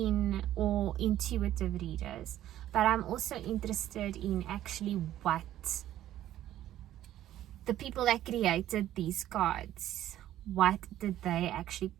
all intuitive readers, but I'm also interested in actually what the people that created these cards, what did they actually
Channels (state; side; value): quieter; left; 12.8 dB